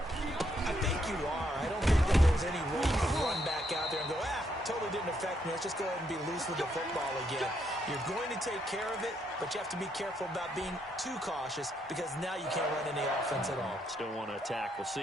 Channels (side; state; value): both; normal; correlation 0.75